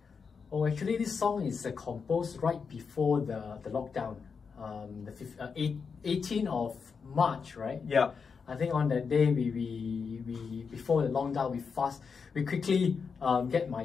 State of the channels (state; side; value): quieter; right; 5.7 dB